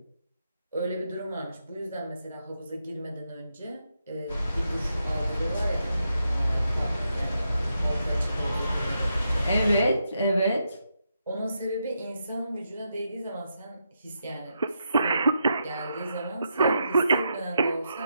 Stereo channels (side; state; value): both; inverted; correlation -0.83